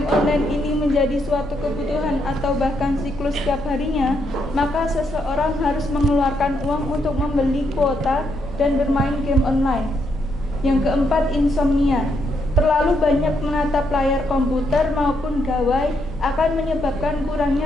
online ini menjadi suatu kebutuhan atau bahkan siklus setiap harinya, maka seseorang harus mengeluarkan uang untuk membeli kuota dan bermain game online. Yang keempat, insomnia. Terlalu banyak menatap layar komputer maupun gawai akan menyebabkan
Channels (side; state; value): both; normal; correlation 0.77